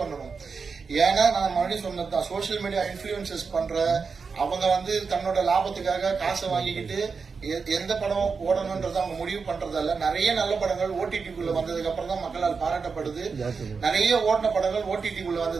பண்ணணும். ஏன்னா நான் மறுபடியும் சொன்னதுதான், சோசியல் மீடியா இன்ஃபுளுசஸ் பண்ற அவங்க வந்து தன்னோட லாபத்துக்காக காசை வாங்கிக்கிட்டு எந்த படம் ஓடணும்ன்றத அவங்க முடிவு பண்றதால நிறைய நல்ல படங்கள் ஓடிடிக்குள்ள வந்ததுக்கு அப்புறம் தான் மக்களால் பாராட்டப்படுது. நிறைய ஓடின படங்கள் ஓடிடிக்குள்ள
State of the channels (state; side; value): quieter; left; 5.1 dB